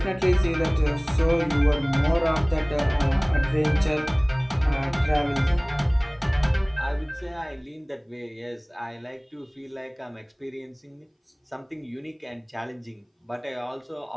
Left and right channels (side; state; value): both; identical; correlation 1.00